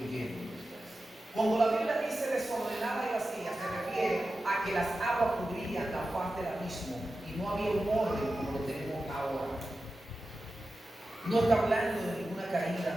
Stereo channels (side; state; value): both; normal; correlation 0.93